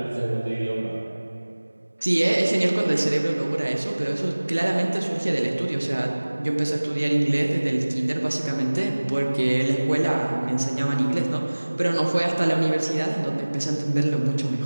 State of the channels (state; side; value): inverted; both; correlation -1.00